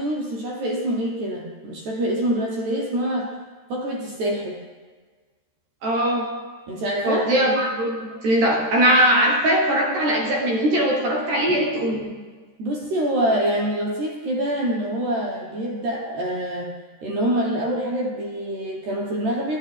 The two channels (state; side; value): late; left; 13 ms